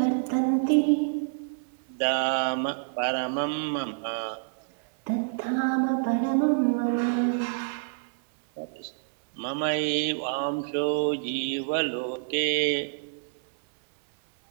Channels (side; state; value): left; silent; 60 dB below the other